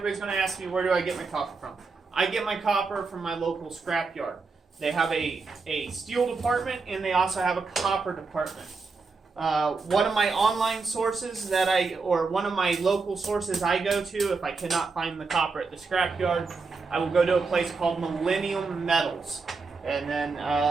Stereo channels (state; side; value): quieter; left; 4.3 dB